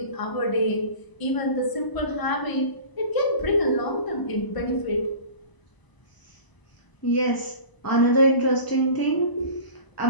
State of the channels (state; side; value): late; right; 1.0 ms